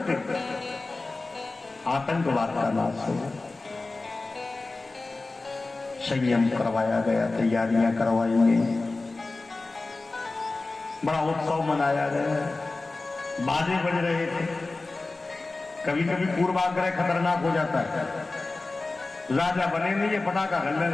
आतंकवाद का नाश हो, संयम करवाया गया, तैयारियां करवाई गई, बड़ा उत्सव मनाया गया, बाजे बज रहे थे। कभी कभी पूर्वाग्रह खतरनाक हो जाता है। राजा बने नहीं, ये पटाखा गलने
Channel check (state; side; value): quieter; right; 3.4 dB